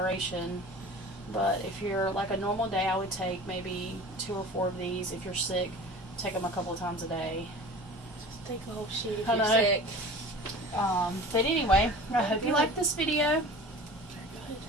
But if you're like a normal day, I would take maybe 2 or 4 of these. If you're sick, take them a couple of times a day. Just take a whole sheet if I you're know. sick. But anyway, I hope you liked this video.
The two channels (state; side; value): normal; both; correlation 0.39